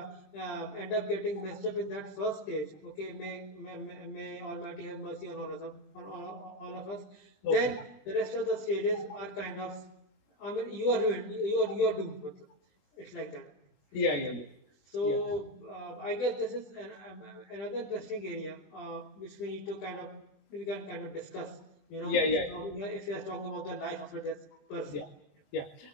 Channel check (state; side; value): late; right; 20 ms